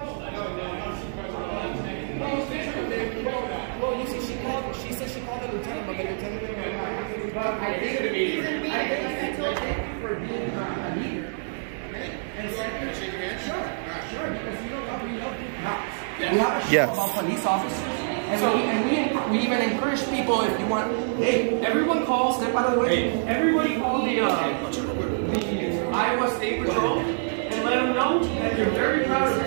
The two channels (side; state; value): left; silent; 61 dB below the other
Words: Well, you see, she said she called the lieutenant, but the lieutenant I think he's in meeting, like I told you, for being a leader. And second, shake your hand? Sure, because you know cops. We have a show about police officers. And we even encourage people, if you want, hey, everyone call, step out of the way. Hey, everybody call the Iowa State Patrol and let them know that you're very proud of